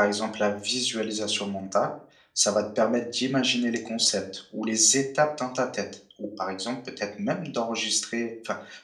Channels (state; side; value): identical; both; correlation 1.00